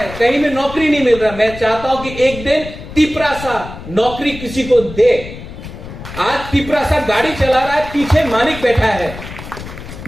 कहीं में नौकरी नहीं मिल रहा। मैं चाहता हूं कि एक दिन तिपरासा नौकरी किसी को दे। आज तिपरासा गाड़ी चला रहा है, पीछे मालिक बैठा है।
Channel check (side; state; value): left; noise; rumble, 12 dB below the sound